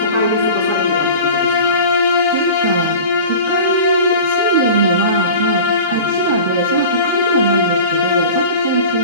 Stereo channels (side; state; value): both; inverted; correlation -0.37